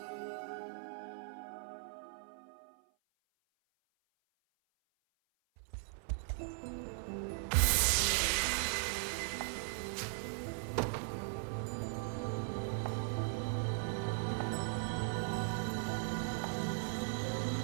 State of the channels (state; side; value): silent; left; 52 dB below the other